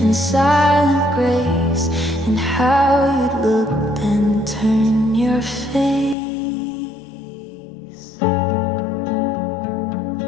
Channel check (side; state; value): right; drops out; at 6.2 s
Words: in silent grace, and how you'd look and turn your face.